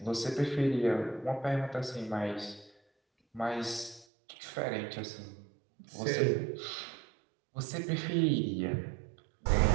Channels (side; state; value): left; drops out; at 4.0 s